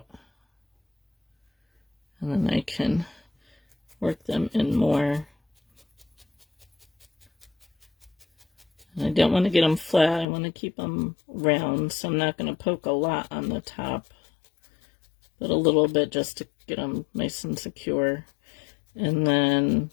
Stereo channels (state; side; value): drops out; right; at 10.2 s